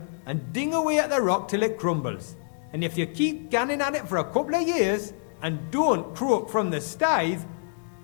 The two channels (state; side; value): silent; right; digital silence